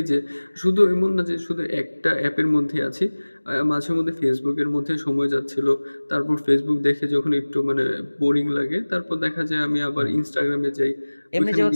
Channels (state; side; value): inverted; both; correlation -1.00